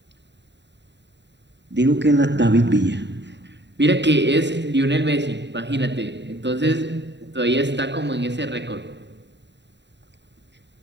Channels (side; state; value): left; late; 0.52 ms